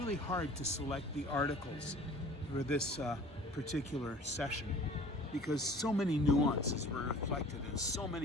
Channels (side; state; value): both; normal; correlation 0.47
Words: hard to select the articles for this particular session because so many nuances were reflected in so